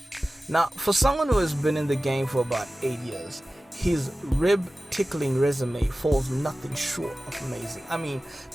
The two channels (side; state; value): both; normal; correlation 0.96